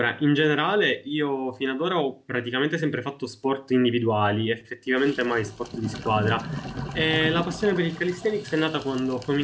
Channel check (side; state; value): both; identical; correlation 1.00